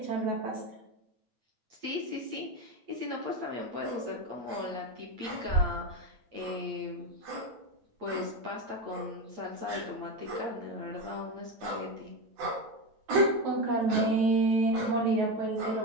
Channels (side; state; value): left; late; 8.5 ms